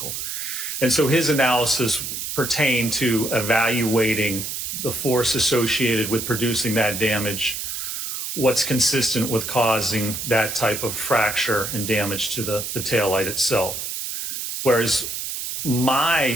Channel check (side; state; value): right; noise; hiss, 5 dB below the sound